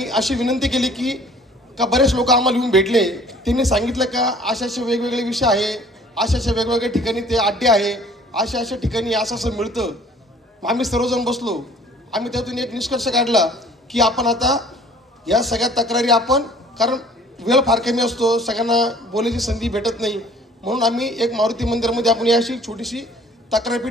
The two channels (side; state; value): both; normal; correlation 0.53